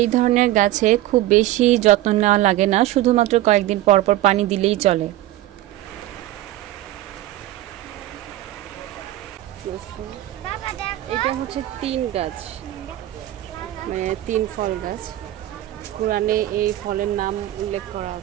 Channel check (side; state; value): left; quieter; 15.0 dB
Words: ধরনের গাছে খুব বেশি যত্ন নেওয়া লাগে না, শুধুমাত্র কয়েকদিন পর পর পানি দিলেই চলে। এটা হচ্ছে 3 গাছ, মানে 3 ফল গাছ। কোরআনে এই ফলের নাম উল্লেখ করা